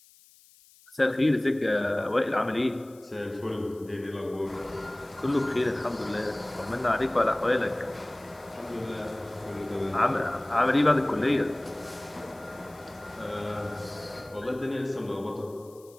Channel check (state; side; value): noise; left; hiss, 26 dB below the sound